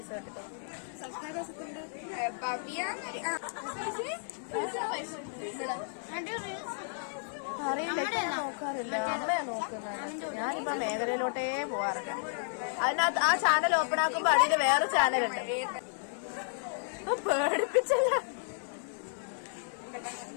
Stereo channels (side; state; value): right; silent; 56 dB below the other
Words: കിട്ടും. അറിയില്ല, നോക്കാറില്ല. അമ്മയാ നോക്കുന്നത്. ഞാനിപ്പോ മേഖലയിലോട്ടേ പോവാറില്ല. അതിനകത്ത് ആ ചാനൽ ഓപ്പൺ ആക്കുമ്പോ അതിന് വേറെ ചാനലുണ്ട്. പേടിപ്പിച്ചല്ല.